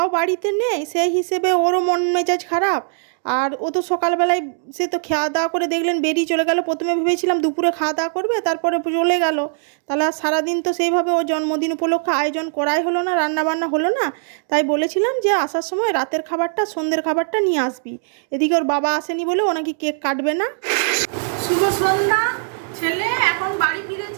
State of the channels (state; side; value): silent; left; digital silence